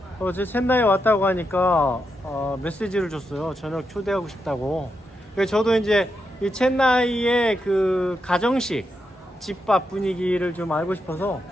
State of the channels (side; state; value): both; normal; correlation 0.84